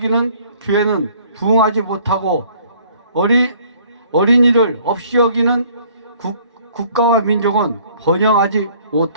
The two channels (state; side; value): inverted; both; correlation -0.58